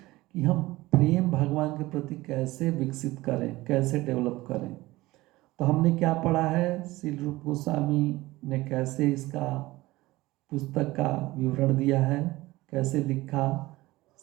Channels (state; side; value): quieter; left; 19.0 dB